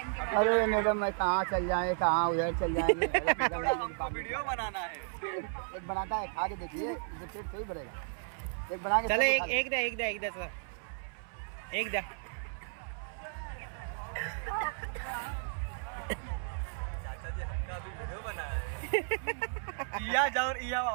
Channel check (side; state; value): left; silent; 55 dB below the other